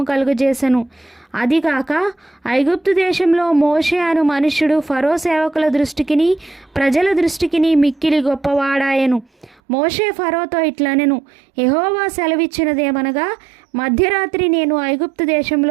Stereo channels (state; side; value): drops out; left; at 9.6 s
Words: కలుగజేసెను. అదిగాక ఐగుప్తు దేశంలో మోషే అను మనుష్యుడు ఫరో సేవకుల దృష్టికిని ప్రజల దృష్టికిని మిక్కిలి గొప్పవాడాయెను. మోషే ఫరోతో ఇట్లనెను, యెహోవా సెలవిచ్చినదేమనగా, మధ్యరాత్రి నేను ఐగుప్తు